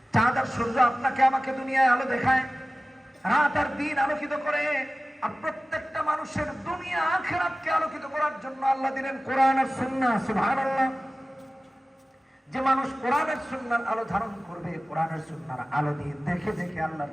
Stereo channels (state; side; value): normal; both; correlation 0.97